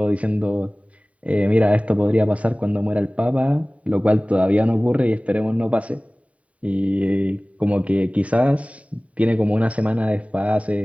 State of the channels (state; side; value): late; left; 0.067 ms